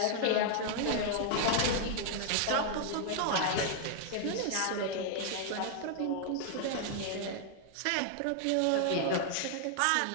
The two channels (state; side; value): different; both; correlation 0.00